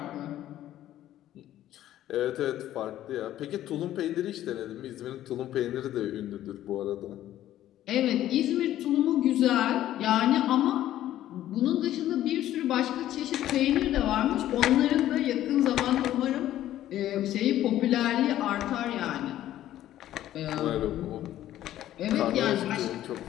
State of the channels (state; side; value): quieter; right; 13.0 dB